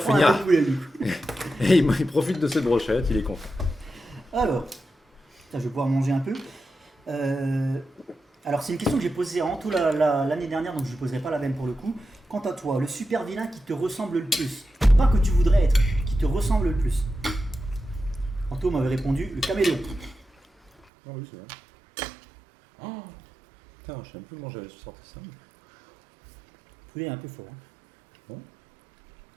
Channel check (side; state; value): left; drops out; at 20.9 s